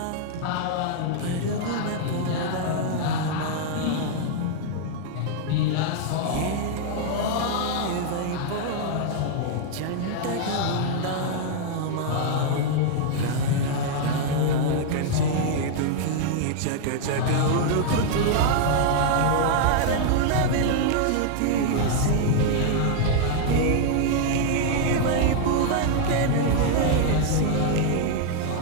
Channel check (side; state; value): both; different; correlation 0.00